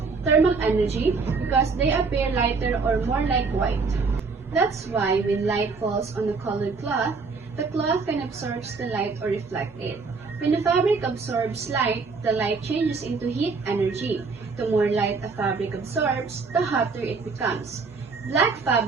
thermal energy because they appear lighter or more like white. That's why when light falls on a colored cloth, the cloth can absorb the light or reflect it. When a fabric absorbs light, the light changes into heat energy. The more light a fabric absorbs, the hotter it becomes. Black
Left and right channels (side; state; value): left; quieter; 4.5 dB